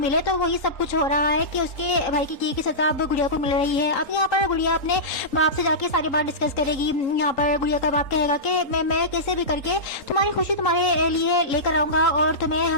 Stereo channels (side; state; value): right; late; 3.8 ms